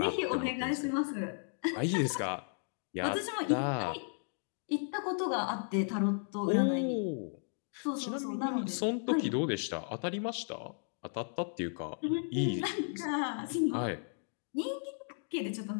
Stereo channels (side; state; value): right; silent; 55 dB below the other